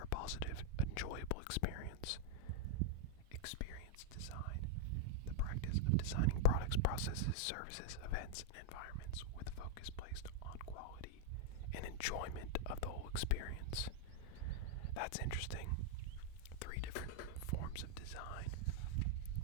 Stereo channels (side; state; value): both; different; correlation -0.01